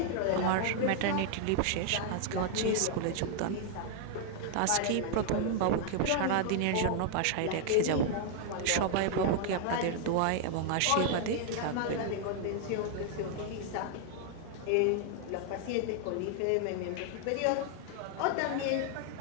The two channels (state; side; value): different; both; correlation 0.00